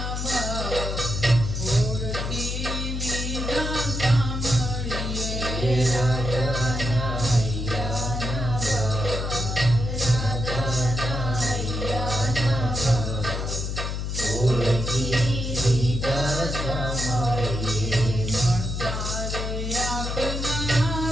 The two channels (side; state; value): left; noise; hum, 3 dB below the sound